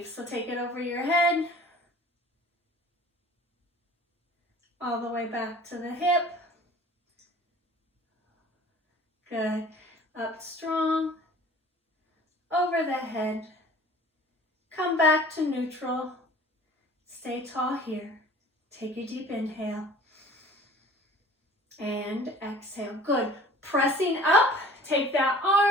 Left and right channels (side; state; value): both; normal; correlation 0.47